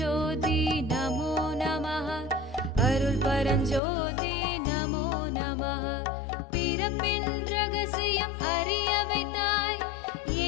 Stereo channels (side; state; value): right; drops out; at 3.8 s